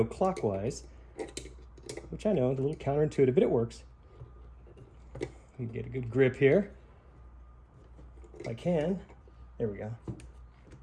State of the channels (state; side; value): identical; both; correlation 1.00